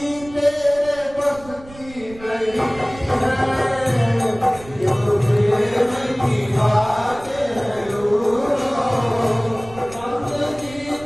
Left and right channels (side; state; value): right; noise; rumble, 19 dB below the sound